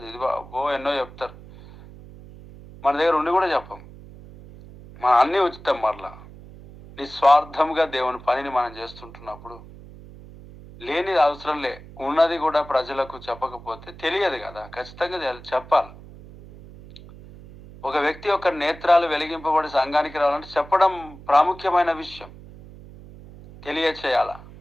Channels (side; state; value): right; noise; hum, 18 dB below the sound